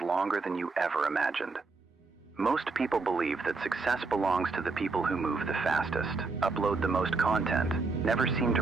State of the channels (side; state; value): left; quieter; 4.0 dB